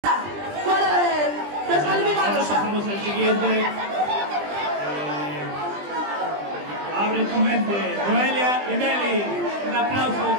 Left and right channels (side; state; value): left; late; 20 ms